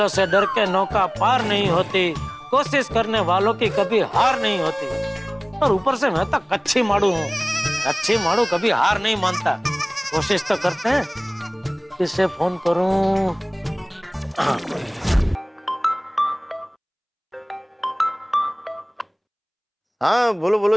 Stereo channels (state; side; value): identical; both; correlation 1.00